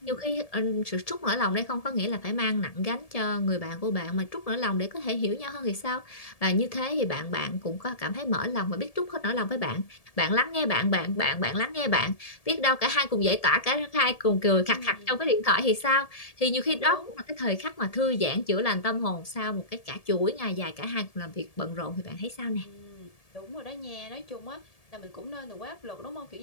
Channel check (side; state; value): right; late; 1.7 ms